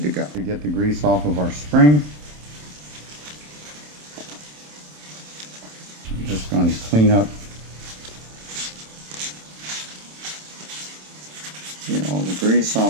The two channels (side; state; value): left; late; 27 ms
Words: to go. To get the grease off of our spring, just going to clean up, get all the grease